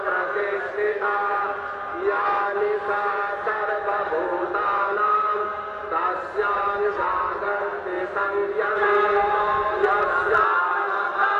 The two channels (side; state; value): both; identical; correlation 1.00